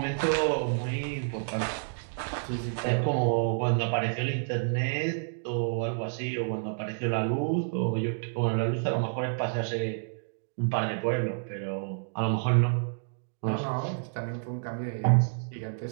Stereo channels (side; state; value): left; silent; digital silence